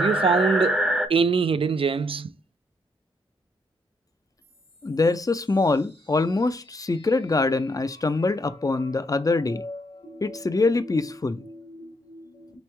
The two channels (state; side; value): normal; both; correlation 0.72